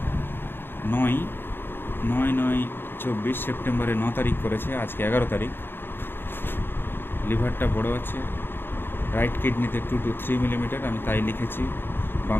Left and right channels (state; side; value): late; right; 0.10 ms